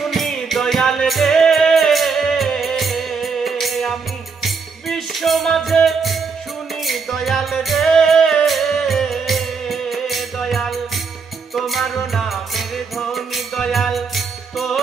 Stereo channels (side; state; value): left; quieter; 5.2 dB